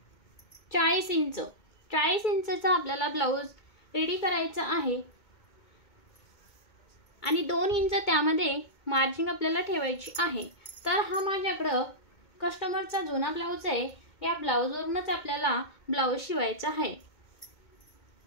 40 इंच। 40 इंचचा आपल्याला ब्लाउज रेडी करायचा आहे आणि 2 इंच त्यामध्ये मार्जिन आपल्याला ठेवायची आहे। तर हा माझ्याकडे कस्टमरचा जुना ब्लाउज आहे। या ब्लाउजवरूनच आपल्याला ब्लाउज शिवायचा आहे।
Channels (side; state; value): right; late; 2.2 ms